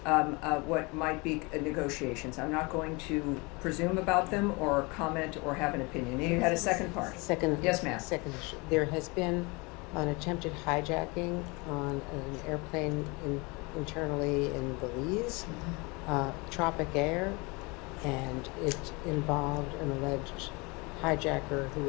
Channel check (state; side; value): quieter; right; 27.3 dB